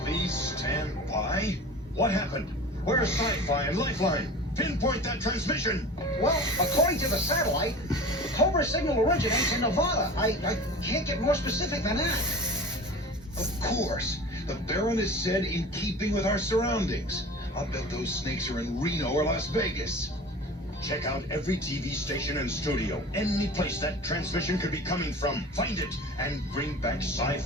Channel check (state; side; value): normal; both; correlation 0.37